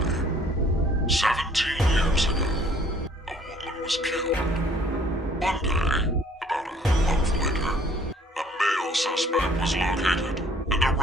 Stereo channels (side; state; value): both; normal; correlation 0.58